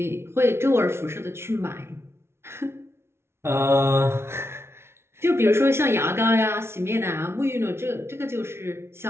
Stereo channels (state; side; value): late; left; 0.12 ms